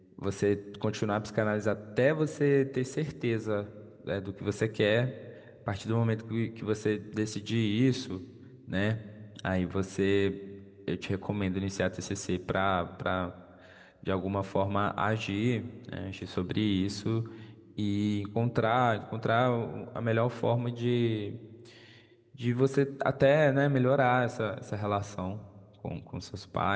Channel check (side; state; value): both; identical; correlation 1.00